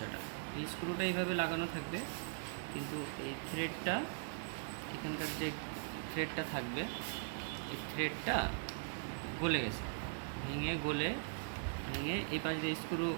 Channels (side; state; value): left; silent; digital silence